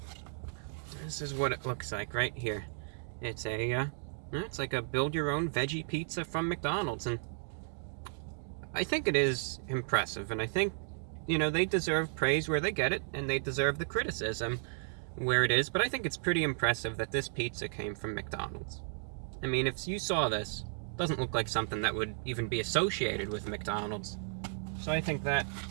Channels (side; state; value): left; silent; digital silence